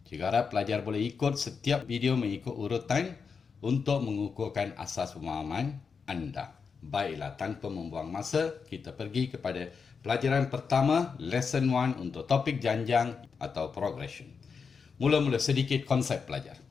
Cikgu harap pelajar boleh ikut setiap video mengikut urutan untuk mengukuhkan asas pemahaman anda. Baiklah, tanpa membuang masa, kita pergi kepada pelajaran pertama, lesson 1 untuk topik janjang atau progression. Mula-mula sedikit konsep pelajar.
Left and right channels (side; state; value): right; quieter; 5.6 dB